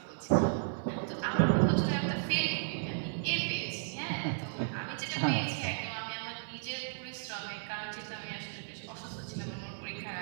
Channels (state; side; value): silent; left; digital silence